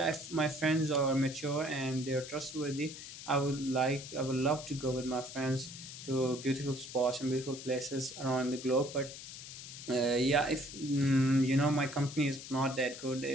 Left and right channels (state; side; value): noise; left; hiss, 12 dB below the sound